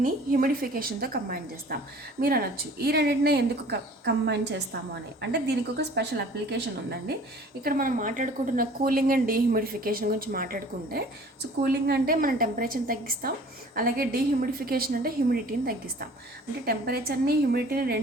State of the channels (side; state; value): both; normal; correlation 0.49